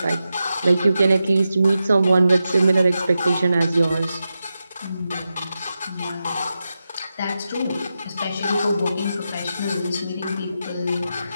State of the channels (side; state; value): both; inverted; correlation -0.90